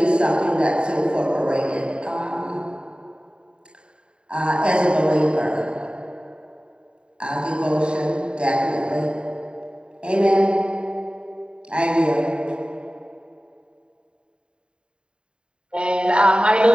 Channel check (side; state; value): left; late; 0.051 ms